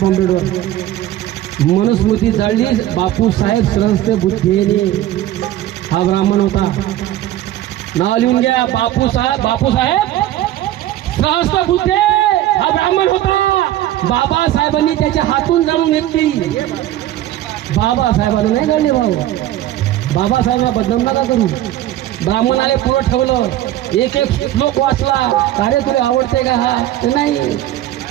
कॉम्प्युटरवर. मनुस्मृती झाली बापूसाहेब सहस्त्र बुद्धेने. हा ब्राह्मण होता. नाव लिहून घ्या. बापूसाहेब सहस्त्र बुद्धे हा ब्राह्मण होता. बाबासाहेबांनी त्याच्या हातून जाणून घेतली. बाबासाहेबांना नाही गळले भाऊ. बाबासाहेबांना बदनाम नका करू. ब्राह्मणाने पुरं ठेवलं. एक श्लोक वाचला. कार्य तुला आवडते का? हा नाही.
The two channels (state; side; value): quieter; left; 13.6 dB